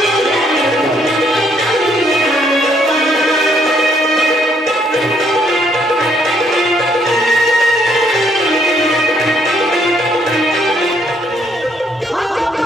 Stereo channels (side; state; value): both; normal; correlation 0.69